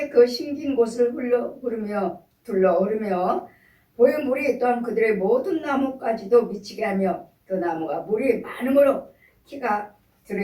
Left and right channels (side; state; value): both; identical; correlation 1.00